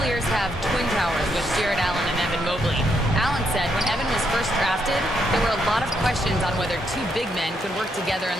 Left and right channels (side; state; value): both; normal; correlation 0.77